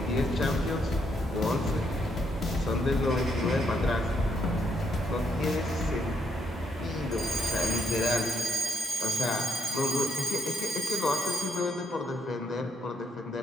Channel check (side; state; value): both; normal; correlation 0.76